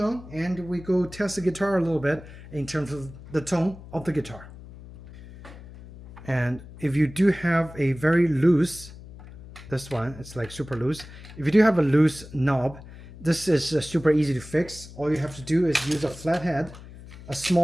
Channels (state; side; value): noise; left; hum, 17 dB below the sound